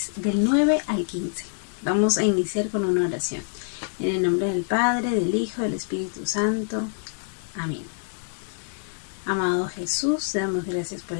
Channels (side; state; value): right; silent; digital silence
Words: del 9 al 15. Vamos a iniciar con una oración. En el nombre del Padre, del Hijo, del Espíritu Santo. Amén. Amado Jesús, te damos gracias por